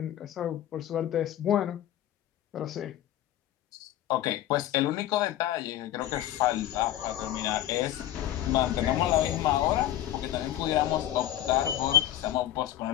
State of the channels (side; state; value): right; quieter; 12.8 dB